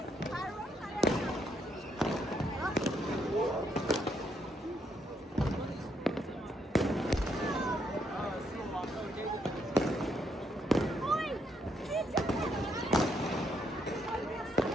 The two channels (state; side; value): normal; both; correlation 0.74